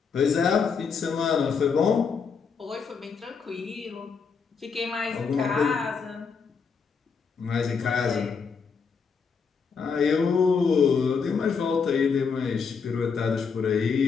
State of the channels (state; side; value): quieter; right; 5.7 dB